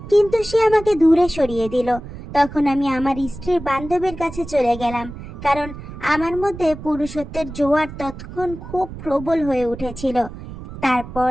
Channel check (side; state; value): right; noise; rumble, 12 dB below the sound